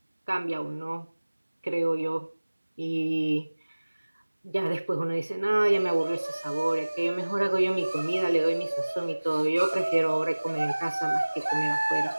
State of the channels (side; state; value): both; inverted; correlation -1.00